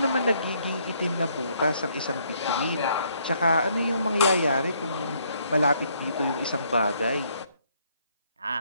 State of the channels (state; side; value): inverted; both; correlation -0.69